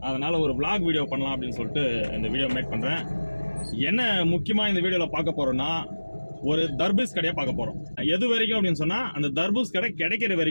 அதனால ஒரு vlog வீடியோ பண்ணலாம் அப்படின்னு சொல்லிட்டு இந்த வீடியோ மேக் பண்ணுறேன். என்ன முக்கியமாக இந்த வீடியோவில் பார்க்க போகிறோன்னா, ஒரு தர்பூஸ் கடையை பார்க்க போகிறோம். எது வரைக்கும் அப்படின்னு சொன்னால், அந்த தர்பூஸ் கடை கிடைக்கிற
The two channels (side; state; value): both; inverted; correlation -1.00